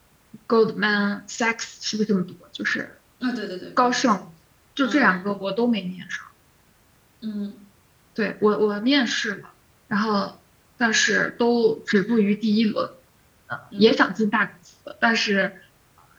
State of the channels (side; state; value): both; identical; correlation 1.00